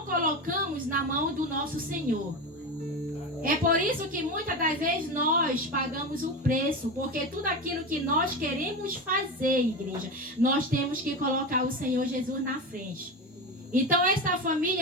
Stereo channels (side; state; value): both; normal; correlation 0.21